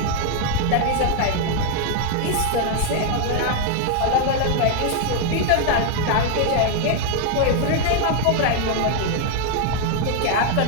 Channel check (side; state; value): both; different; correlation 0.00